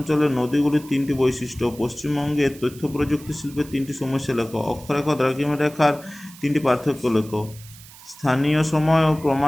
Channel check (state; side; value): noise; right; hiss, 20 dB below the sound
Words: নদীগুলির 3টি বৈশিষ্ট্য। পশ্চিমবঙ্গের তথ্য প্রযুক্তি শিল্পের 3টি সমস্যা লেখো। অক্ষরেখা ও দ্রাঘিমা রেখার 3টি পার্থক্য লেখো। স্থানীয় সময় ও